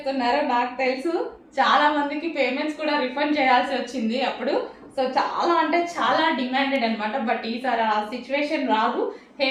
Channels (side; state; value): both; identical; correlation 1.00